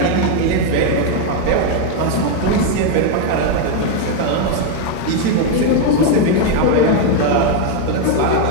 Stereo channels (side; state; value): both; different; correlation 0.01